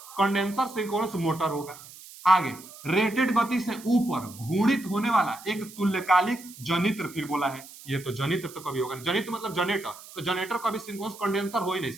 कंडेंसर सिंक्रोनस मोटर होगा। आगे रेटेड गति से ऊपर घूर्णित होने वाला एक तुल्यकालिक जनित्र, फिर बोला है ये तो जनित्र तो कभी होगा नहीं। जनित्र मतलब जनरेटर, तो जनरेटर कभी सिंक्रोनस कंडेंसर हो ही नहीं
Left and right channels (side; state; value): right; noise; hiss, 18 dB below the sound